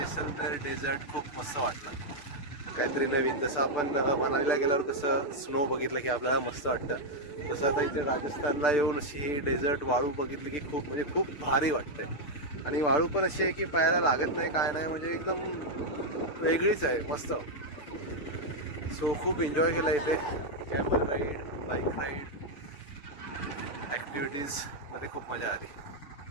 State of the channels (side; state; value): right; late; 6.8 ms